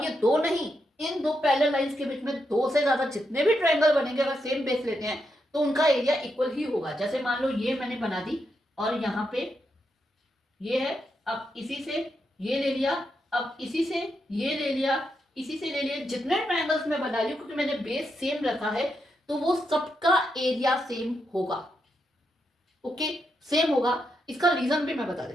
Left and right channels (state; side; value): normal; both; correlation 0.83